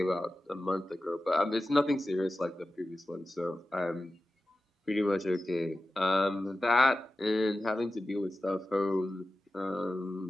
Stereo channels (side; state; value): both; normal; correlation 0.93